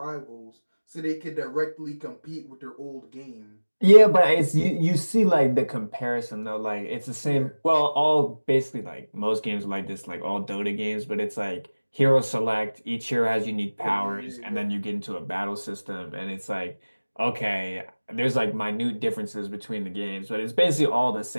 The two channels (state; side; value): inverted; both; correlation -1.00